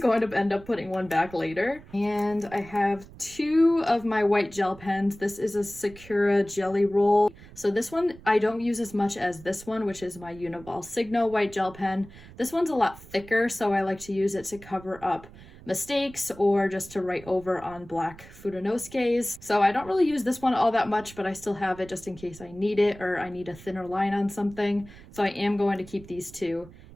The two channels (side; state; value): right; noise; rumble, 19 dB below the sound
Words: going to end up putting one back later. And I have 2 of my white gel pens. This is a Sakura jelly roll. So this one I don't use as much as this one, which is my uniball signo white gel pen. This one's a lot thicker, so I like to use it to cover up mistakes or just to write over on black fudenosukes. So I don't really use this one all that much, but I still have it just in case I need it or I need a thinner line on something. So I am going to keep these 2